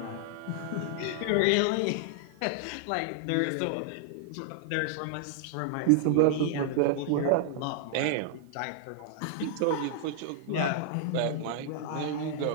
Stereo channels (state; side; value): different; both; correlation -0.01